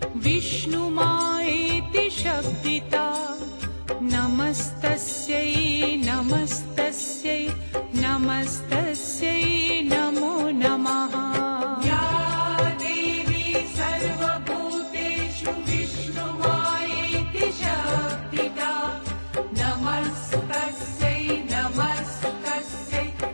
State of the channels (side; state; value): both; inverted; correlation -1.00